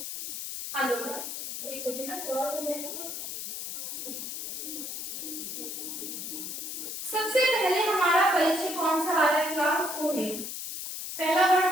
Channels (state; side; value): noise; left; hiss, 6 dB below the sound